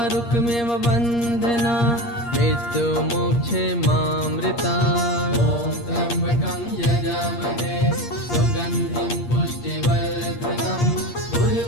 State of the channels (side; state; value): right; late; 8.5 ms